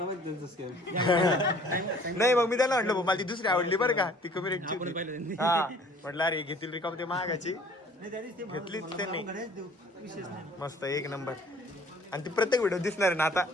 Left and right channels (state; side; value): normal; both; correlation 0.53